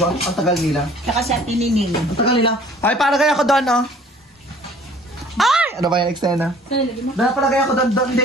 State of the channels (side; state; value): both; normal; correlation 0.53